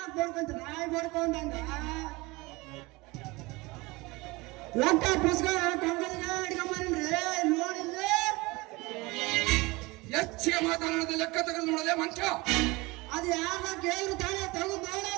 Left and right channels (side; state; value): left; quieter; 23.2 dB